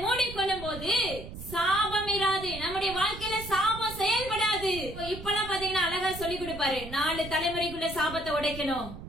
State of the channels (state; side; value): noise; right; rumble, 11 dB below the sound